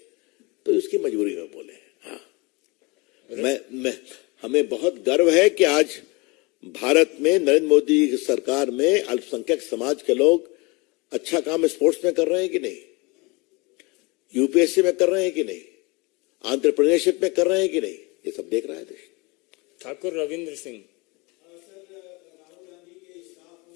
तो इसकी मजबूरी में बोले। हाँ, हमें बहुत गर्व है कि आज भारत में नरेंद्र मोदी की सरकार में अल्पसंख्यक समाज के लोग अच्छा काम स्पोर्ट्स में कर रहे हैं कि नहीं? यूपीएससी में कर रहे हैं कि नहीं, एंटरप्रेन्योरशिप में कर रहे हैं कि नहीं, ये सब देख रहा है देश। ठाकुर रविंद्र सिंह। सर राहुल गांधी के स्टाफ हो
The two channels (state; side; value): quieter; right; 26.7 dB